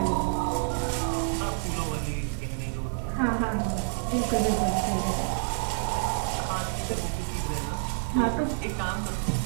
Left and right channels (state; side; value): silent; left; digital silence